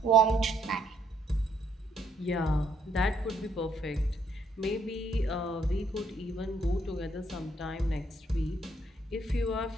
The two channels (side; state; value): both; normal; correlation 0.70